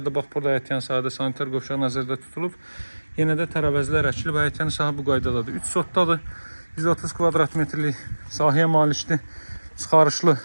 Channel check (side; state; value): both; inverted; correlation -1.00